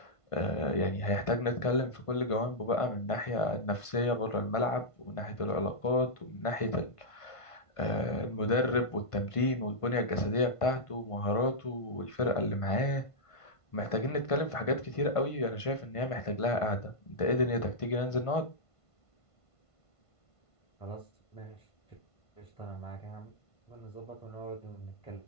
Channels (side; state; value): right; late; 1.5 ms